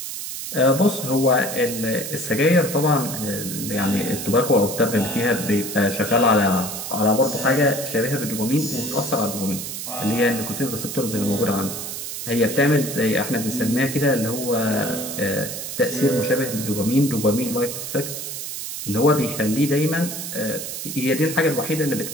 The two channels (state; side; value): noise; right; hiss, 7 dB below the sound